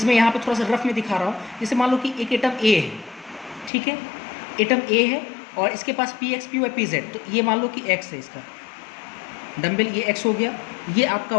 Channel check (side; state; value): right; drops out; at 3.7 s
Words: यहाँ पे थोड़ा सा रफ में दिखा रहा हूँ। जैसे मान लो कि एक एटम ए है, ठीक है, एटम ए है और इसके पास px py pz, तो ये मान लो कि x है, इसका डम्बल ये x हो गया, ये आपका